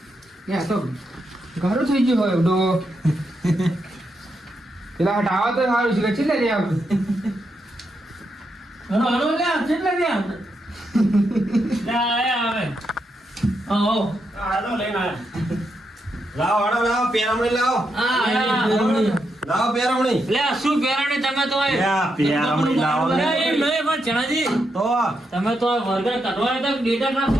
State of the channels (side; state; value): both; normal; correlation 0.82